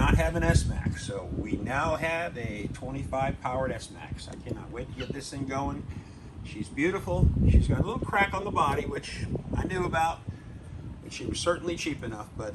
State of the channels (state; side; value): identical; both; correlation 1.00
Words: have an S-Max, so we now have a 25 powered S-Max. I cannot wait to get this thing going. She's beautiful. She's got a little crack on the body, which I knew about. She was certainly cheap enough,